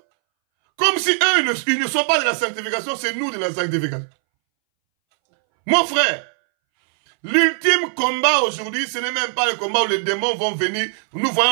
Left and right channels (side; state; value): left; silent; 64 dB below the other